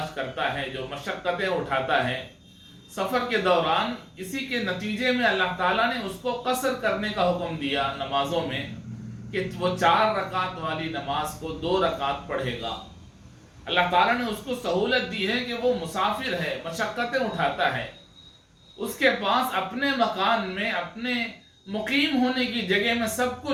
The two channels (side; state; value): both; identical; correlation 1.00